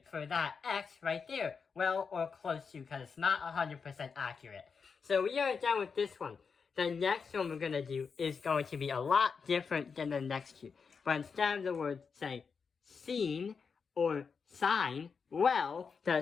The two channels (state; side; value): quieter; right; 5.6 dB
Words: for that x right there. Well, or close to, because it's not 100% accurate. So we are done with this one. The next one we're going to do is going to be a lot different than the next two. But instead of the word saying sine or sine, well,